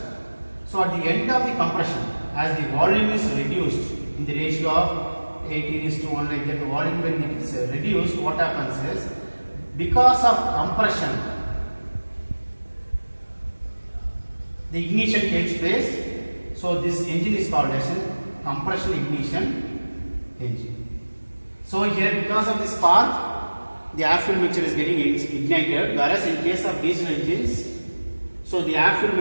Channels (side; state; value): both; inverted; correlation -1.00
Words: So at the end of the compression, as the volume is reduced in the ratio of 18:1 like that, the volume when it is reduced, what happens is because of compression, the ignition takes place So this engine is called as a compression ignition engine. So here, because of this spark, the air fuel mixture is getting ignited, whereas in case of diesel engines, so the air fuel